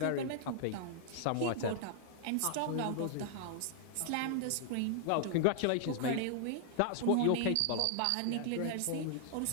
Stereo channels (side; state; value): both; different; correlation -0.01